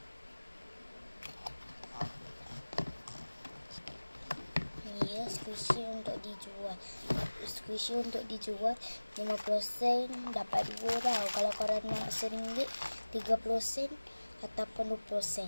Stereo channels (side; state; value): both; inverted; correlation -1.00